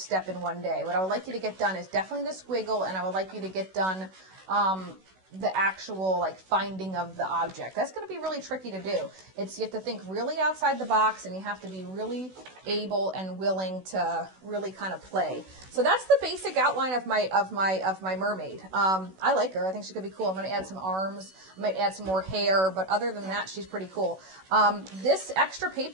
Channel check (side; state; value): left; late; 16 ms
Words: in one day. What I would like you to get done is definitely the squiggle, and I would like you to get done the actual like finding of the object. That's going to be really tricky to do. You have to think really outside the box, and you have to be really able and willing to really kind of play. So that's the basic outline of my mermaid. I like her. I think she's gonna be cool. I'm gonna add some arms. I might add some more hair, but other than that, she's pretty cool. This extra